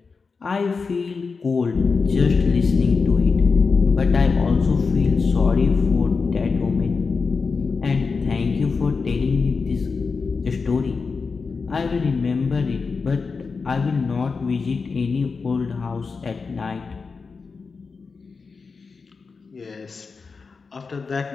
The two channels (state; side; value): quieter; right; 4.8 dB